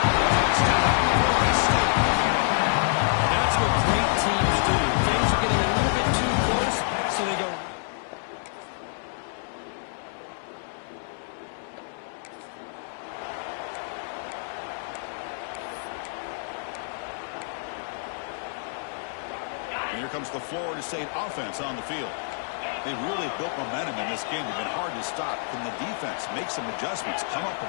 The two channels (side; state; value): right; silent; 60 dB below the other